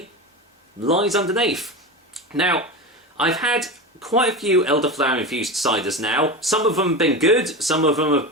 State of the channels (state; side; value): normal; both; correlation 0.23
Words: lies underneath. Now, I've had quite a few elderflower infused ciders now. Some of them have been good, some of them have